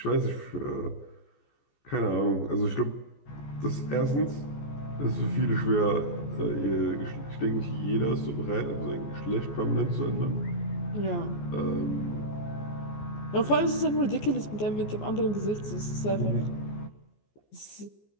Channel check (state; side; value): late; right; 14 ms